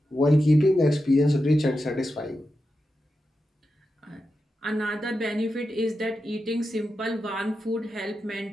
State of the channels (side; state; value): both; normal; correlation 0.89